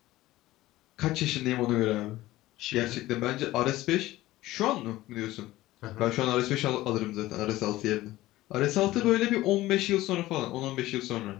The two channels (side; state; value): right; quieter; 16.8 dB